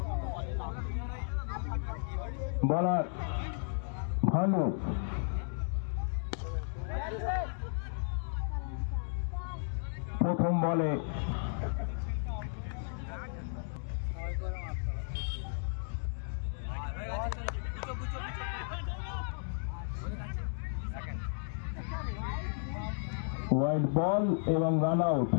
বলার ভালো। প্রথম বলে হোয়াইট বল এবং রান আউট।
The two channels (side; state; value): right; silent; digital silence